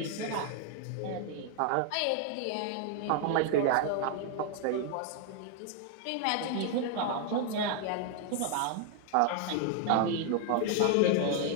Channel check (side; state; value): both; different; correlation 0.00